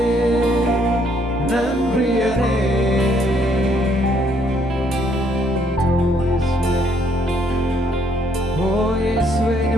ನನ್ ಪ್ರಿಯನೇ ಓ ಯೇಸುವೆ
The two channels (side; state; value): both; normal; correlation 0.68